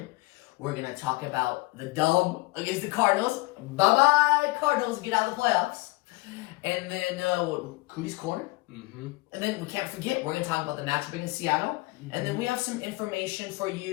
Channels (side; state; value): right; quieter; 22.2 dB